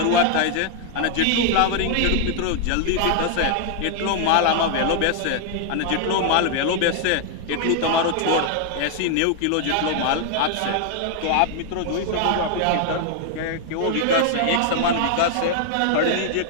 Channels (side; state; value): both; different; correlation 0.00